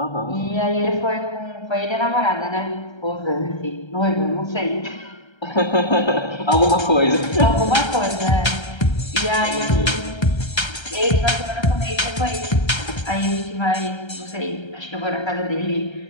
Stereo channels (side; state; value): right; late; 1.3 ms